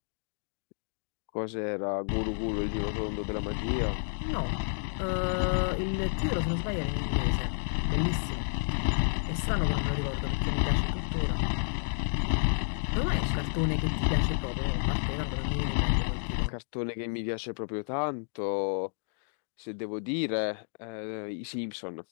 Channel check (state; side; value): silent; right; digital silence